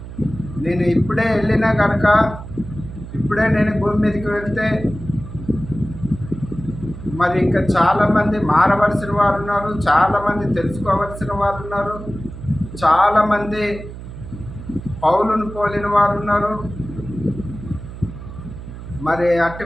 నేను ఇప్పుడే వెళ్ళినా కనుక, ఇప్పుడే నేను భూమి మీదకి వెళ్తే మరి ఇంకా చాలామంది మారవలసిన వారు ఉన్నారు, చాలామంది తెలుసుకోవలసిన వారు ఉన్నారు, చాలామంది పౌలును పోలిన వారు ఉన్నారు. మరి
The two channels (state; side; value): noise; right; hum, 12 dB below the sound